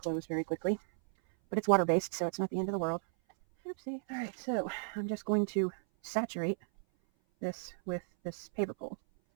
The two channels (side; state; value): left; silent; 55 dB below the other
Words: very quickly. But it's water-based, so it's not the end of the world. Oopsie. All right, so I'm just going to saturate this with this paper pulp.